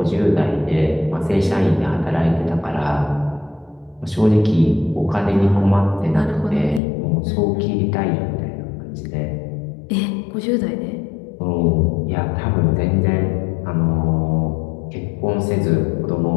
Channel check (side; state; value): right; drops out; at 6.8 s